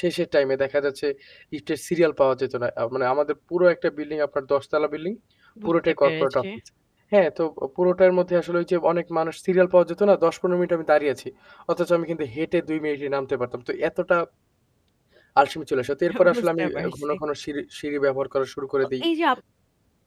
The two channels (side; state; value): both; identical; correlation 1.00